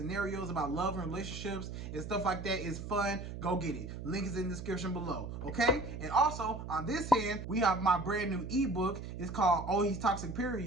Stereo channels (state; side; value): noise; right; hum, 8 dB below the sound